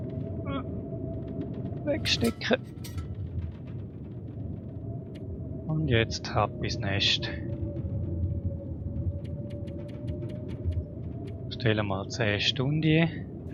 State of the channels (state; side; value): identical; both; correlation 1.00